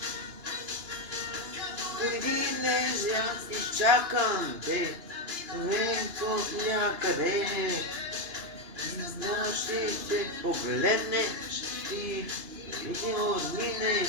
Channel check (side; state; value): left; late; 2.9 ms